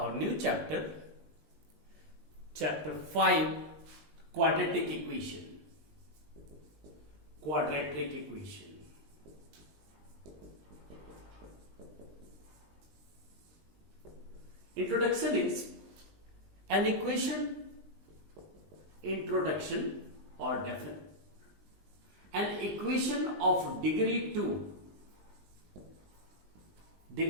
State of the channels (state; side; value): late; left; 20 ms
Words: new chapter, chapter 5, quadratic equation. Quadratic equation. Introduction is an equation, introduction or definition. An equation of degree 2